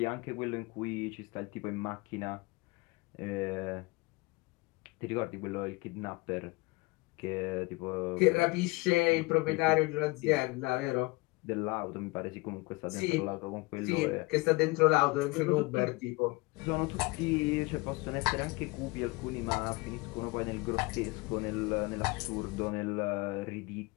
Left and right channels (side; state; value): right; quieter; 24.6 dB